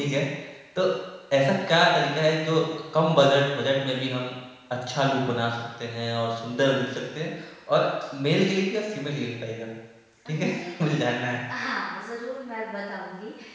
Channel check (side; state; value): both; identical; correlation 1.00